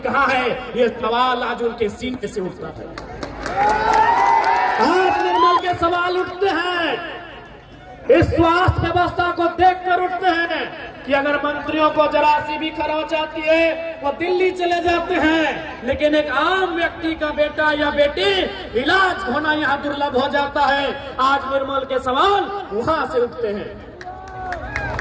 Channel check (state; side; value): identical; both; correlation 1.00